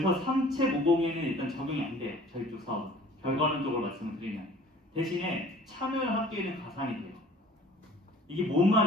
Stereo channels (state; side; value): normal; both; correlation 0.50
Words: 3책502에는 일단 적용이 안 돼요. 저희 쪽 사업. 결과론적으로 말씀을 드리면. 대신에 참여를 학교에는 가산이 돼요. 이게 뭔